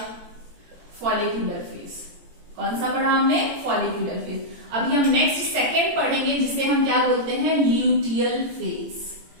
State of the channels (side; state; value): left; late; 18 ms